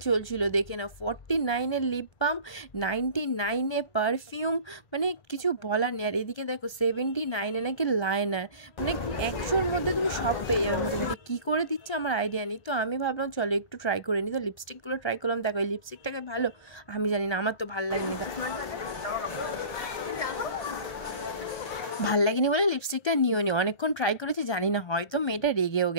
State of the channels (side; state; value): right; late; 1.3 ms